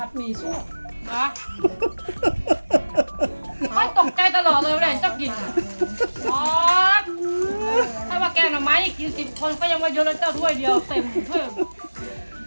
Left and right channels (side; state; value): both; inverted; correlation -1.00